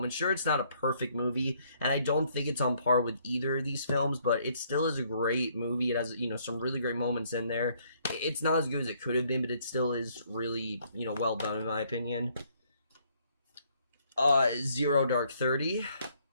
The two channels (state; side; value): inverted; both; correlation -0.67